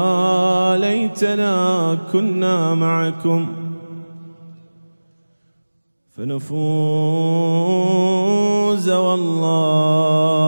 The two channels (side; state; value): both; inverted; correlation -1.00